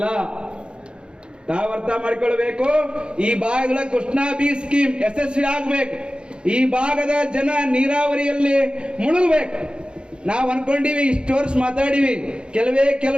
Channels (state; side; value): late; left; 0.053 ms